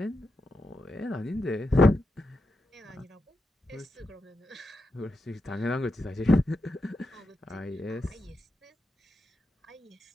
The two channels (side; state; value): both; normal; correlation 0.87